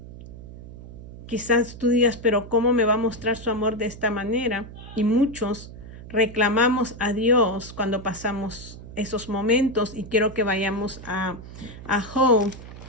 Quizás tú digas, pero ¿cómo me va a mostrar su amor de esta manera? Y muchos reclamamos a Dios cuando pasamos esos momentos, y quiero que vayamos a Job,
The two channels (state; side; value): noise; right; hum, 15 dB below the sound